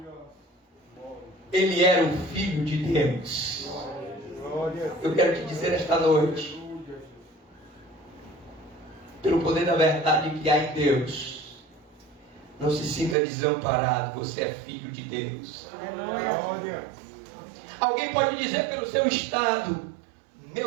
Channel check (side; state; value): left; drops out; at 13.2 s